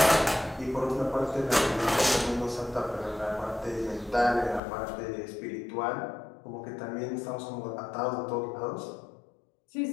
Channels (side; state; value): right; drops out; at 4.6 s